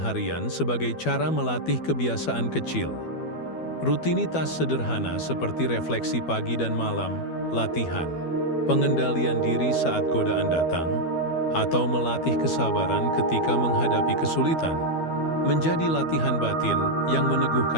sebagai cara melatih kebiasaan kecil. Rutinitas sederhana seperti refleksi pagi dan malam, latihan, pengendalian diri saat godaan datang, atau melatih kesabaran ketika menghadapi kesulitan, menjadi latihan batin yang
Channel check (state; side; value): late; right; 12 ms